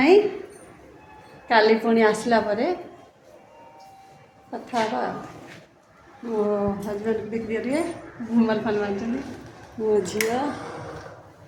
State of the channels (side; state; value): both; identical; correlation 1.00